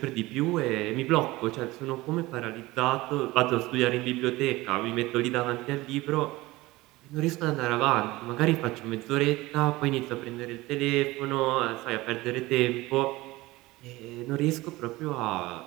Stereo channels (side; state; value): left; quieter; 19.8 dB